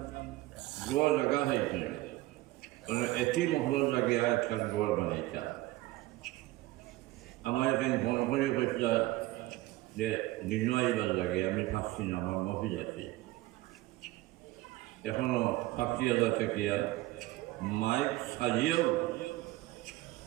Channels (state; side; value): quieter; left; 18.1 dB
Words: গোয়া জায়গা হয়েছে, কোনো এটি মহল লাগে আর একখান গোয়ার বানাইতা। আমার এখানে মনে করে কইছিল যে দিন আইবার লাগে, আমি পাচ্ছি না, আমার মফিজ আছে এখনো ৫০,০০০ টাকিয়া মাইক সাজিয়েও